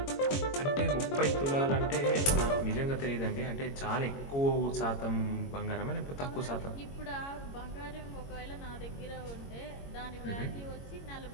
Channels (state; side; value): late; right; 22 ms